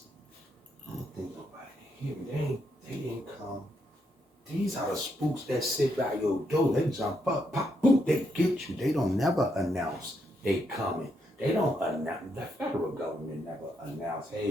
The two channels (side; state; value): both; normal; correlation 0.78